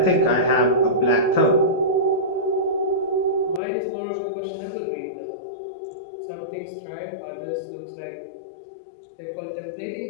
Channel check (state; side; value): drops out; right; at 3.6 s